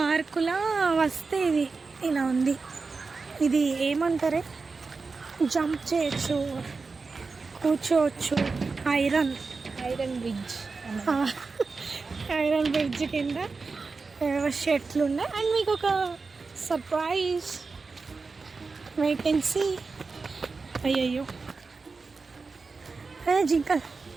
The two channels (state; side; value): quieter; left; 4.3 dB